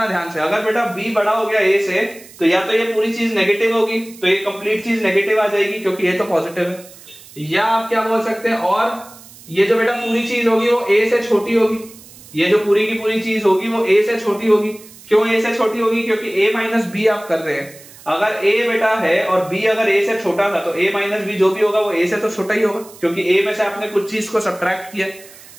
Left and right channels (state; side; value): noise; right; hiss, 21 dB below the sound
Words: ध्यान से, अगर बेटा b बड़ा हो गया a से तो या तो ये पूरी चीज नेगेटिव होगी, तो ये कंप्लीट चीज नेगेटिव आ जाएगी क्योंकि ये तो पॉजिटिव है, या आप क्या बोल सकते हैं, और ये जो बेटा पूरी चीज होगी वो a से छोटी होगी, ये जो पूरी की पूरी चीज होगी वो a से छोटी होगी। क्यों a से छोटी होगी, क्योंकि a माइनस b आप कर रहे हैं, अगर a बेटा है और b अगर a से छोटा था तो a माइनस b जो भी होगा वो a से तो छोटा ही होगा, क्योंकि a में से आपने कुछ चीज को सब्ट्रैक्ट किया,